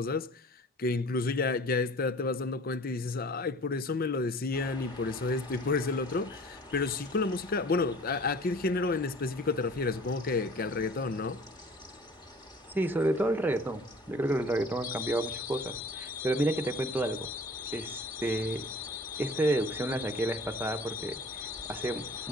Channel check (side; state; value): both; normal; correlation 0.47